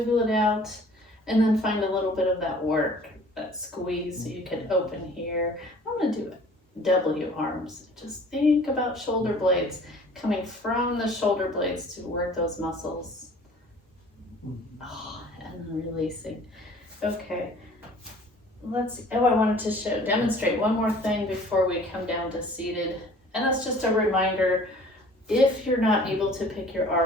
it out, and then find a little bit of that work, that squeeze, so you can open here. I'm going to do it. W arms. Just think about shoulder blades coming from the shoulder blades to work those muscles. And then releasing. Okay. I wanted to demonstrate one more thing before we come down to seated. And that's just a reminder, if you're not able to pick your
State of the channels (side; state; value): both; normal; correlation 0.50